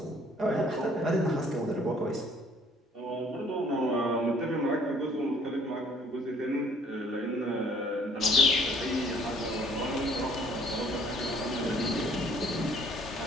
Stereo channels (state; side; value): normal; both; correlation 0.58